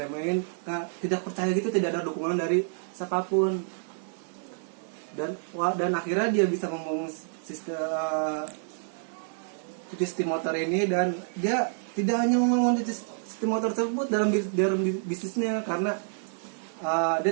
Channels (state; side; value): silent; left; 59 dB below the other